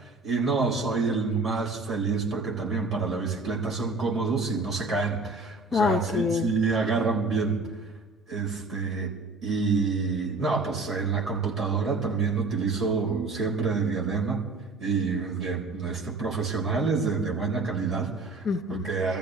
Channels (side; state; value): left; quieter; 3.3 dB